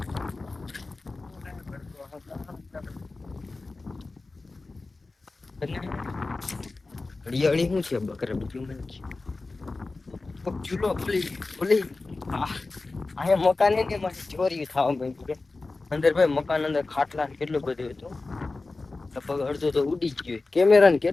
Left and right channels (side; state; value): right; quieter; 3.5 dB